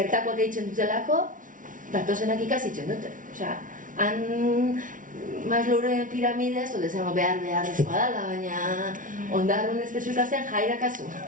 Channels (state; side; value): late; left; 0.38 ms